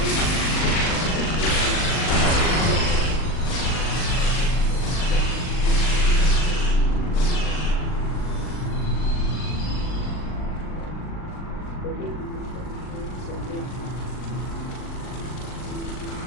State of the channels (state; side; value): late; right; 39 ms